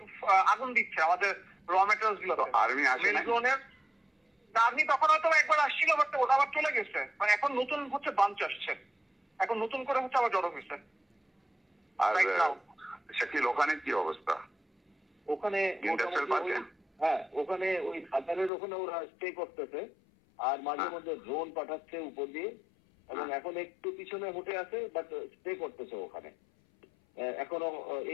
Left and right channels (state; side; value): drops out; right; at 18.5 s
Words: আগুন দিচ্ছে আমাদের র মেটেরিয়ালস গুলো। আর্মি আসে না? আর্মি তখন হয়তো একবার আসছিল, বাট ওটা আবার চলে গেছে। মানে এখন নতুন হচ্ছে বাঞ্চ আসছে, এখন নতুন করে হচ্ছে আবার জড়ো হয়েছে। আর শাকিল ওখানে কি অবস্থা? ওখানে হ্যাঁ, ওখানে ওই খাতারের ওখানে ওরা স্টে করতেছে, আর মাঝে মধ্যে ড্রোন পাঠাচ্ছে উপর দিয়ে, এবং এখন একটু পিছনে উঠে আছে, বাট স্টে করতেছে ওখানে এখনো।